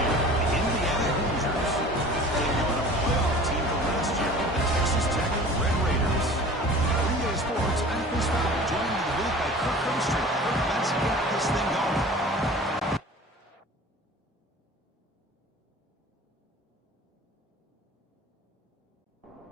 the Indiana Hoosiers. Taking on a playoff team from last year, the Texas Tech Red Raiders. Three-Day Sports, I'm Chris Fowler, joined in the booth by Kirk Herbstreit. Kirk, let's get this thing going.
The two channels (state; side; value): normal; both; correlation 0.43